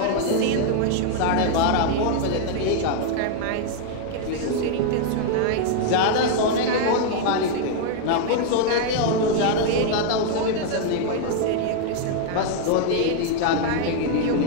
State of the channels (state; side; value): different; both; correlation 0.00